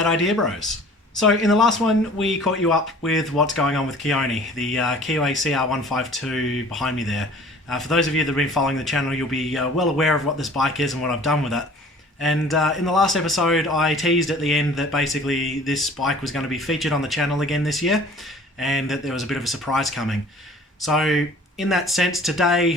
Idea Bros. So in the last one we caught you up with what's going on with Keone, the Keeway CR152 behind me there. For those of you that have been following the channel, you'll be well aware of what this bike is and what I've done with it. And in the last episode I teased at the end that basically this bike was going to be featured on the channel again this year, and that there was a bit of a surprise coming. So in that sense,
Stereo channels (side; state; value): both; normal; correlation 0.49